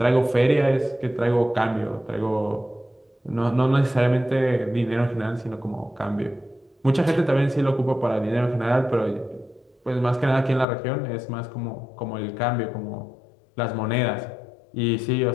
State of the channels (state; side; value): drops out; right; at 10.7 s